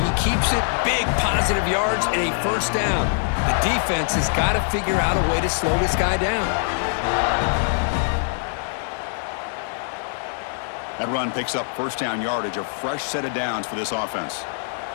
keeps it. Big positive yards and a first down. The defense has got to figure out a way to slow this guy down. That run picks up first down yardage, a fresh set of downs for this offense.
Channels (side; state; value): right; silent; digital silence